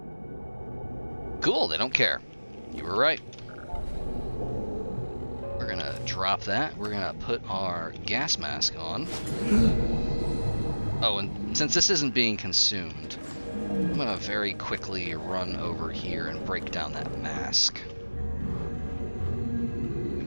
Cool, they don't care. You were right. We're gonna drop that. We're gonna put our gas mask on. Oh, and since this isn't being consumed, I'm gonna very quickly run over here and break down that mask.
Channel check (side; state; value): both; inverted; correlation -1.00